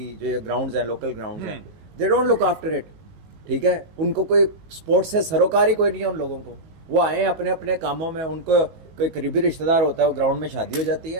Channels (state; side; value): late; left; 19 ms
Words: जो ग्राउंड्स हैं, लोकल ग्राउंड्स हैं, they don't look after it. ठीक है, उनको कोई स्पोर्ट्स से सरोकार ही कोई नहीं है उन लोगों को। वो आए अपने अपने कामों में, उनको कोई करीबी रिश्तेदार होता है, वो ग्राउंड में शादी हो जाती